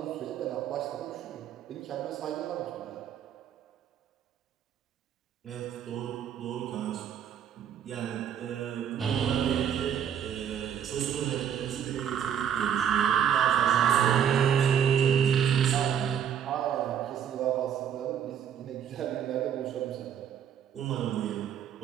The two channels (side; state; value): left; quieter; 8.8 dB